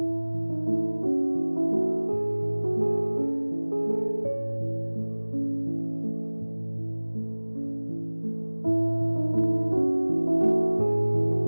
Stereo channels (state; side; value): inverted; both; correlation -1.00